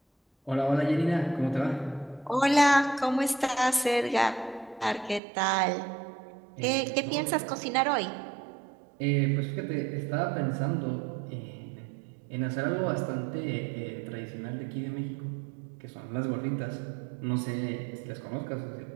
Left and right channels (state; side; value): drops out; left; at 5.2 s